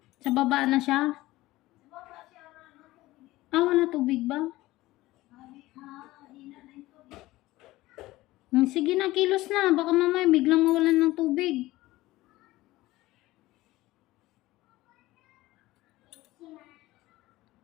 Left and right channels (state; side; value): quieter; right; 17.9 dB